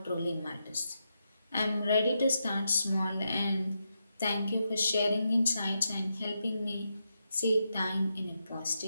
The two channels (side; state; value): both; inverted; correlation -0.85